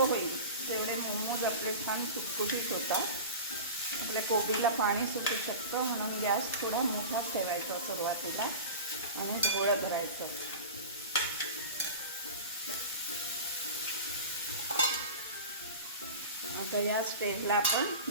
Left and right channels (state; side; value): inverted; both; correlation -0.32